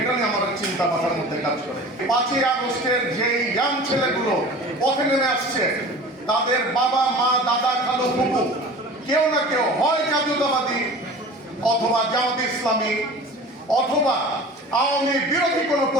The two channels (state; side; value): normal; both; correlation 0.40